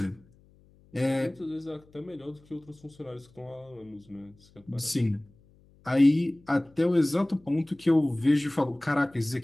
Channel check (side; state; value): left; noise; hum, 29 dB below the sound